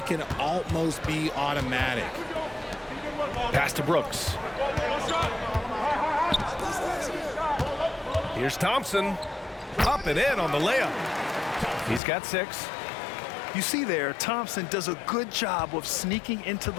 can almost be automatic. Pass to Brooks. Here's Thompson. Up and in on the layup. He's got 6. You see there, Thompson does a good job of sneaking into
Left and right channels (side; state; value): right; drops out; at 12.0 s